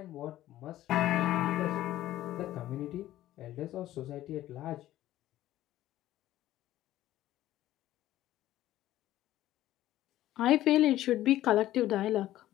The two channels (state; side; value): quieter; right; 14.2 dB